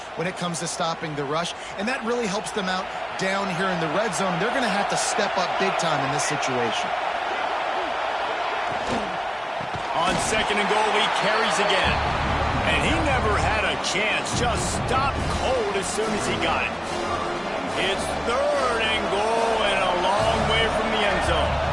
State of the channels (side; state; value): both; identical; correlation 1.00